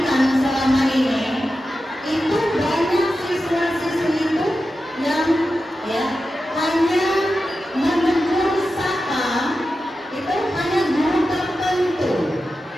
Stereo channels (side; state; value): both; normal; correlation 0.92